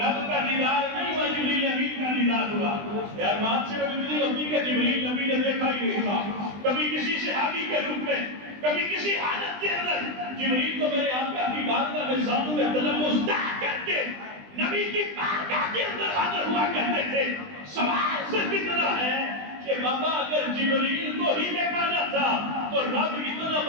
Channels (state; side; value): late; left; 20 ms